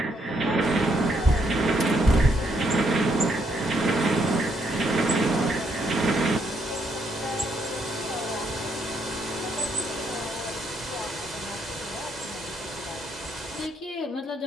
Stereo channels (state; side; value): normal; both; correlation 0.74